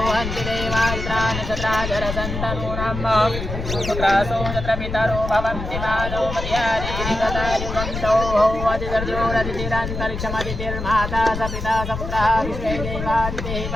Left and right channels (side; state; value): left; noise; rumble, 6 dB below the sound